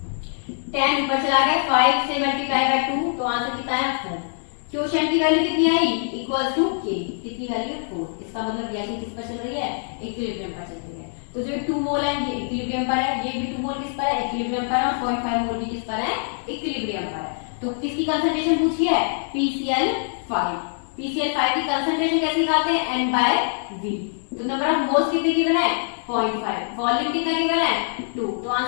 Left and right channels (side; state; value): right; silent; digital silence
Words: 10 ऊपर चला गया, 5 से मल्टीप्लाई बाय 2, तो आंसर कितना है, 4। क्वोशिएंट की वैल्यू कितनी आई, इक्वल्स टू K, कितनी वैल्यू, 4। इसका मतलब रिएक्शन किस पर चल रही है, इक्विलिब्रियम पर चल रही है। तो जो 2 मोल है ये इक्विलिब्रियम पर है, ये भी 2 मोल किस पर है, इक्विलिब्रियम पर है, और 0.5 मोल भी किस पर है, इक्विलिब्रियम पर है। तो किसकी कंसंट्रेशन पूछी है, PCl5। PCl5 की कंसंट्रेशन कैसे निकालते हैं, N/V। तो नंबर ऑफ मोल्स कितने गिवन है, 0.5, वॉल्यूम कितना गिवन है, 2, तो